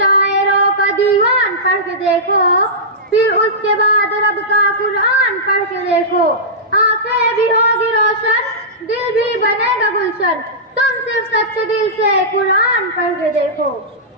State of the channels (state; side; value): normal; both; correlation -0.15